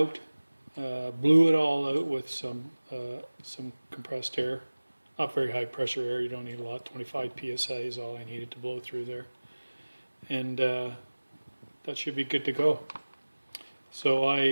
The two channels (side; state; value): both; inverted; correlation -1.00